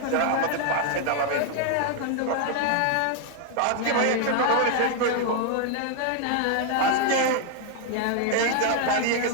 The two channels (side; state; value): both; different; correlation 0.00